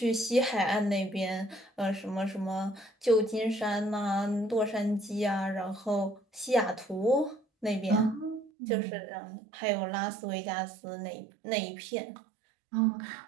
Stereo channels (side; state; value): left; drops out; at 8.5 s